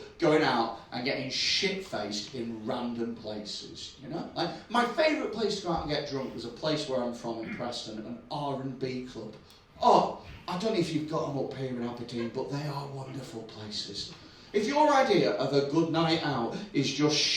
going out and getting shit-faced in random places, you know? Like, my favourite place to go out and get drunk was a place where I'm from in Preston, an R&B club. Oh, I don't know if you've got them up here in Aberdeen, but they are wonderful places. If your idea of a good night out is just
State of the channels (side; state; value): both; identical; correlation 1.00